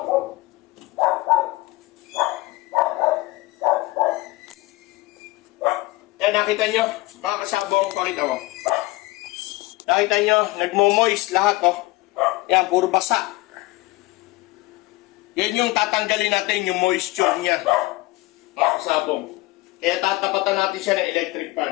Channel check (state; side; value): quieter; right; 20.5 dB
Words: Yan, nakita nyo, mga kasabong, pakita mo. Nakita nyo, nagmo-moist lahat Yan, puro basa. Yan yung tatanggalin natin yung moisture niya. Mga kasabong. Kaya tatapatan natin siya ng electric